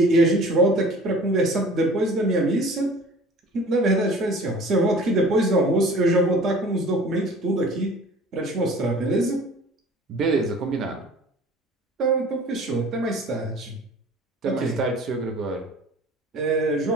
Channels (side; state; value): both; normal; correlation 0.46